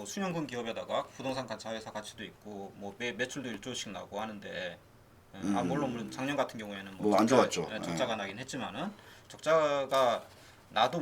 수년근 기업에다가 부동산 자회사 가치도 있고 뭐 매출도 1조씩 나고 하는데 물론 작년 같은 경우에는 뭐안 좋았죠. 적자가 나긴 했지만은 적자가 나도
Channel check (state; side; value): identical; both; correlation 1.00